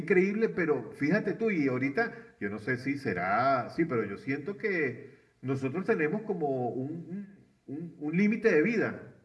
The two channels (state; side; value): identical; both; correlation 1.00